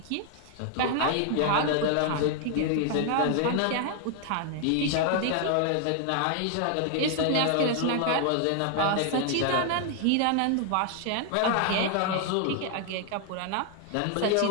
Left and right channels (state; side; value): different; both; correlation 0.00